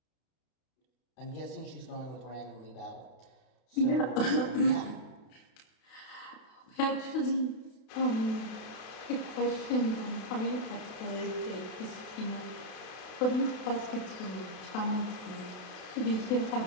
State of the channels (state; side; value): late; right; 32 ms